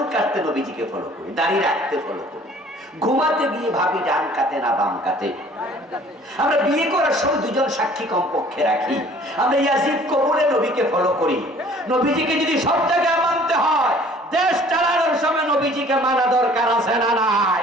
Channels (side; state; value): both; normal; correlation 0.53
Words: কাটতে নবীজিকে ফলো করি, দাড়ি রাখতে ফলো করি, ঘুমাতে গিয়ে ভাবি ডান কাতে না বাম কাতে। আমরা বিয়ে করার সময় দুজন সাক্ষী কমপক্ষে রাখি। আমরা ইয়াজিদ কবরে নবীকে ফলো করি। নবীজিকে যদি সব জায়গায় মানতে হয়, দেশ চালানোর সময় নবীজিকে মানা দরকার আছে না